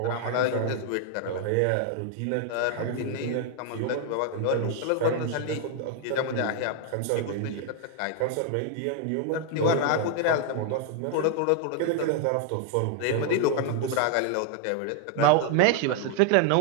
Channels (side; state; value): both; different; correlation 0.00